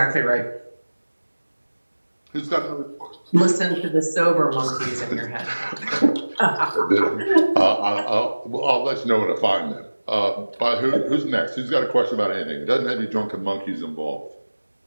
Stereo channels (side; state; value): both; inverted; correlation -1.00